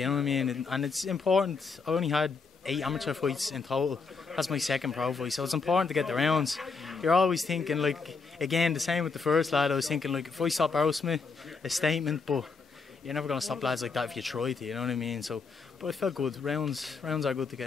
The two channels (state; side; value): quieter; right; 4.7 dB